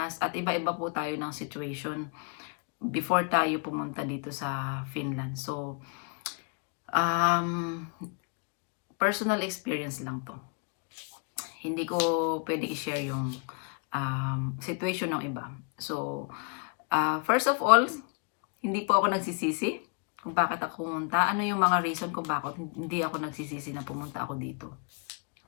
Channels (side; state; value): right; quieter; 38.9 dB